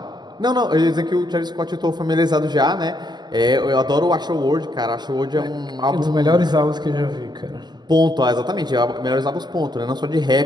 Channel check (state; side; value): late; left; 0.21 ms